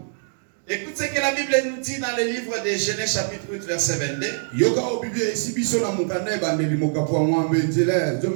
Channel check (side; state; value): left; silent; digital silence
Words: Écoute ce que la Bible nous dit dans le livre de Genèse chapitre 8 verset 22.